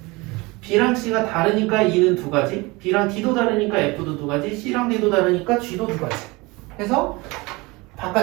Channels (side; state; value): left; quieter; 24.0 dB